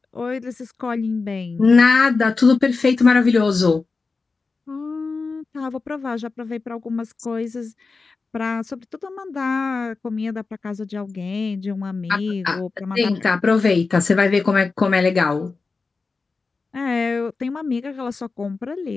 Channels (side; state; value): right; quieter; 4.2 dB